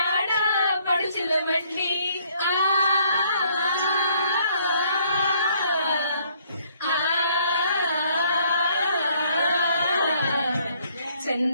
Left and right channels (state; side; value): inverted; both; correlation -0.65